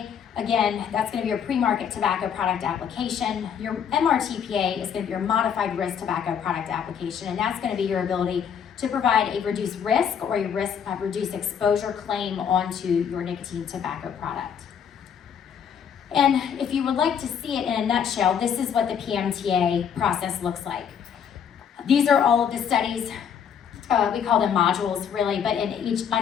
again, that's going to be your pre-market tobacco product application. Your MRTPA is going to be your modified risk tobacco product application, and that's going to be your ability to provide a reduced risk or a reduced exposure claim onto your nicotine tobacco product. And if you would like to see it in a nutshell, this is what the PMTA process looks like. These are all of the studies. We call them modules, really, but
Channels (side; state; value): right; quieter; 7.9 dB